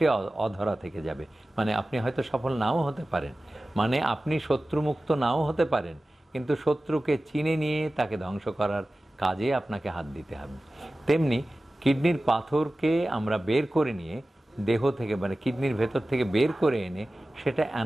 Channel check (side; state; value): both; normal; correlation 0.96